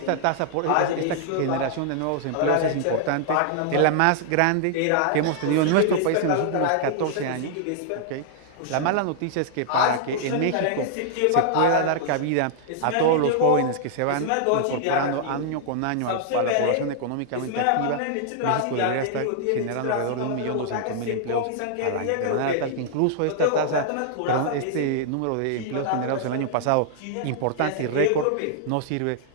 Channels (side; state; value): both; different; correlation -0.01